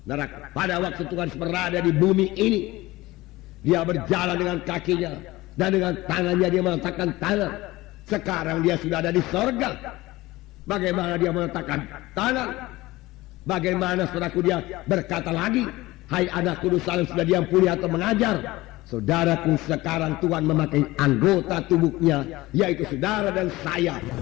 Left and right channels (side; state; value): right; quieter; 19.1 dB